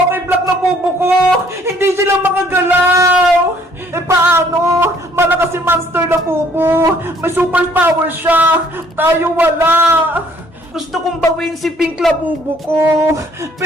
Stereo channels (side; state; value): both; normal; correlation 0.61